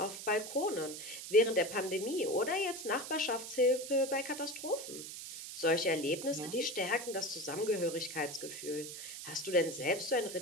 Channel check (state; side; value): noise; right; hiss, 9 dB below the sound